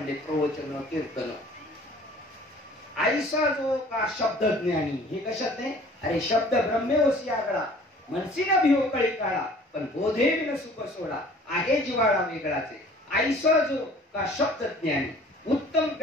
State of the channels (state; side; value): normal; both; correlation 0.50